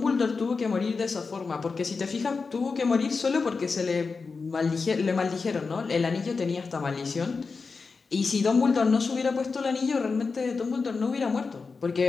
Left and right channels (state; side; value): quieter; right; 4.6 dB